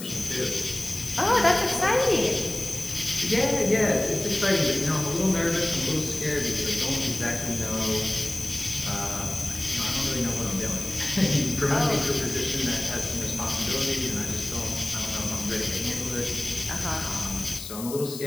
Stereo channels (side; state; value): left; noise; hiss, 10 dB below the sound